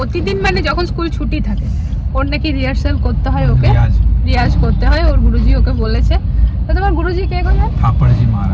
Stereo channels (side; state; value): both; identical; correlation 1.00